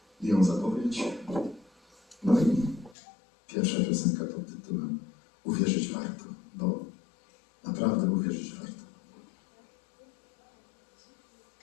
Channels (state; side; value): drops out; right; at 3.0 s